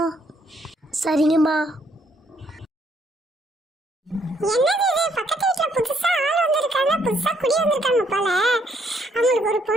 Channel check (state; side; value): normal; both; correlation 0.70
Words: சரிங்கம்மா. என்னது இது? பக்கத்து வீட்டுல புதுசா ஆள் வந்திருக்காங்க, புதுசா குடி வந்திருக்காங்க போல. அவங்களுக்கு ஒரு